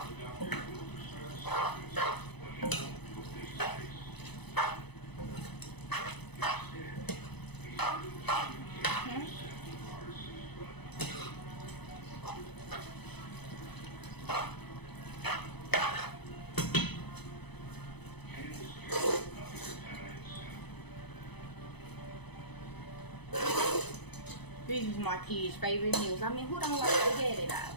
This is my kids' favorite meals. I mean, who don't like spaghetti though?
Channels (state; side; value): late; right; 0.99 ms